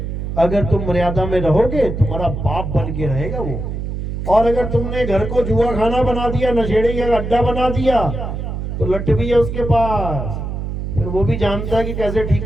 अगर तुम मर्यादा में रहोगे तुम्हारा बाप बन के रहेगा वो, और अगर तुमने घर को जुआ खाना बना दिया, नशेड़ी का अड्डा बना दिया, तो लट भी है उसके पास, फिर वो भी जानता है कि कैसे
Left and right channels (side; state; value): right; noise; hum, 5 dB below the sound